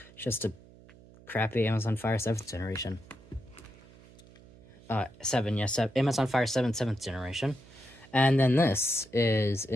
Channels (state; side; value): noise; right; hum, 23 dB below the sound